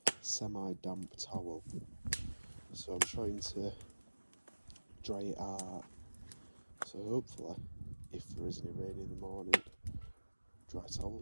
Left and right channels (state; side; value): inverted; both; correlation -1.00